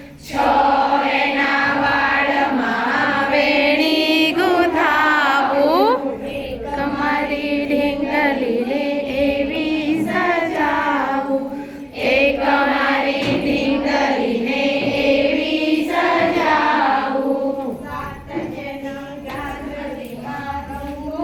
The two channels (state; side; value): identical; both; correlation 1.00